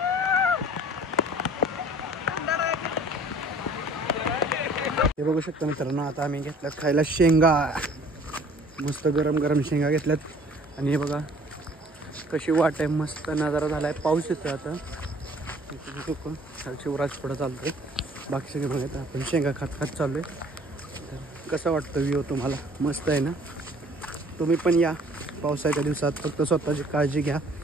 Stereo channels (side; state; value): both; normal; correlation 0.53